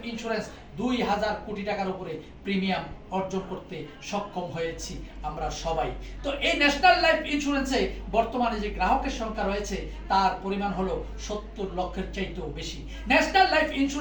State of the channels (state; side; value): identical; both; correlation 1.00